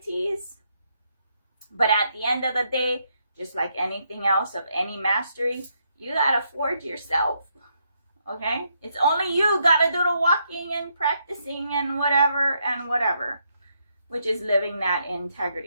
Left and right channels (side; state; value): both; inverted; correlation -0.77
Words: But at the end of the day, just like anything else of any mastery, you gotta forge yourself. Okay? It's only you gotta do the walking and practicing and whatever, which is living that